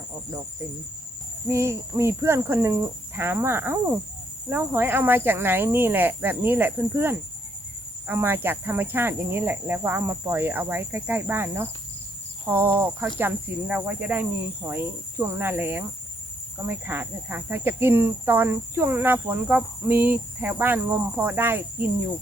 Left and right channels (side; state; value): both; normal; correlation 0.72